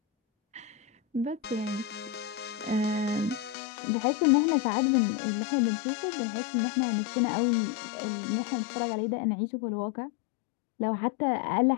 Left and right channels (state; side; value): drops out; right; at 3.6 s